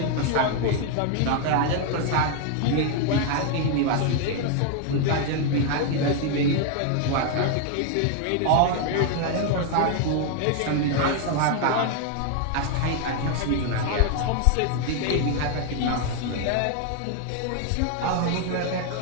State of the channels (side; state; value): both; different; correlation 0.00